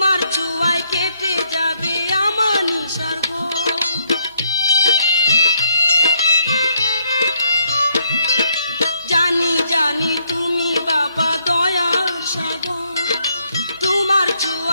চুয়ায় কেটে যাবে আমার নিসর্গ। জানি জানি তুমি বাবা দয়ার সাগর, তোমার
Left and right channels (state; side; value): inverted; both; correlation -0.71